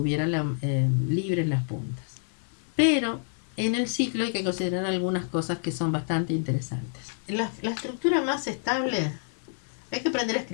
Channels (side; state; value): right; silent; 55 dB below the other